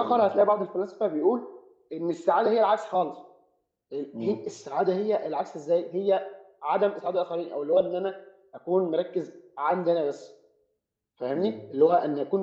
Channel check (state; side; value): identical; both; correlation 1.00